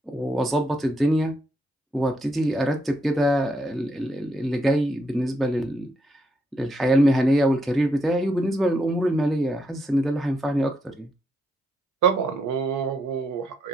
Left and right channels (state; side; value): normal; both; correlation 0.78